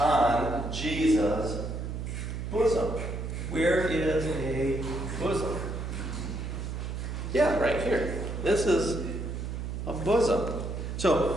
Jesus' bosom. Where is a bosom? Yeah, right here. This is a bosom.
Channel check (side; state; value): right; noise; hum, 5 dB below the sound